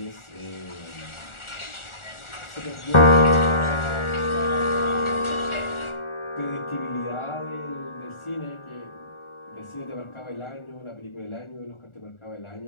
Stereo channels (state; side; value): late; right; 1.4 ms